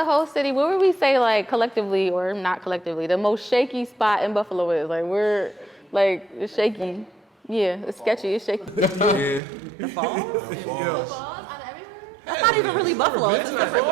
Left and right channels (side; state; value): left; drops out; at 9.4 s